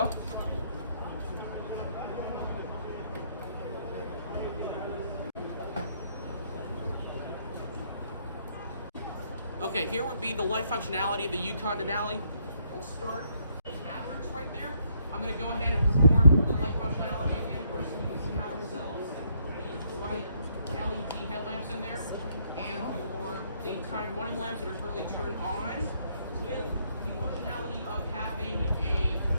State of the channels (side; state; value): both; inverted; correlation -0.72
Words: Okay, here would be the light functionality of the Yukon Denali. We'll start with hazards right there. I'm going to go ahead and perform the light functionality again. First, you have yourselves the white LED headlamps in there, and the time running lamps that are currently turned on, with the functionality of having a